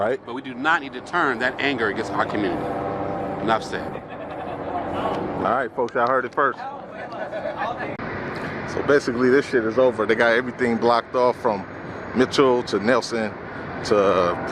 But we do not need to turn that anger against our community. Enough said. All right, folks, y'all heard it first. So basically, this shit is over. They got everything blocked off from Mitchell to Nelson to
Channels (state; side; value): identical; both; correlation 1.00